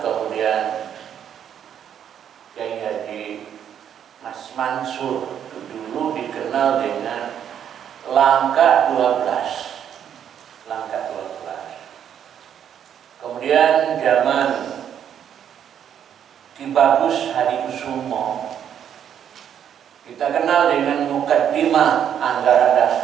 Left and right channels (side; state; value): left; quieter; 9.1 dB